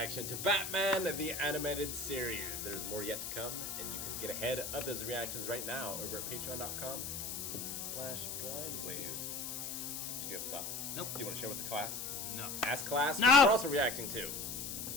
to Batman, the animated series. There's more yet to come, and you can get ahead of those reactions right now over at patreon.com/blindwave. Did you have a thought? Nope. Do you want to share with the class? No. Ask Class, no! We're also reacting to.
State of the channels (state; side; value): noise; left; hiss, 5 dB below the sound